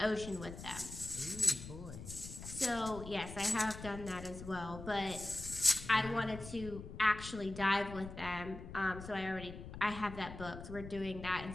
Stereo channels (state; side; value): noise; left; rumble, 11 dB below the sound